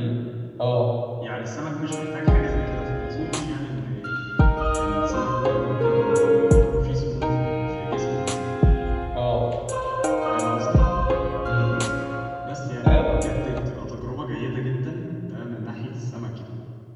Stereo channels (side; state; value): both; identical; correlation 1.00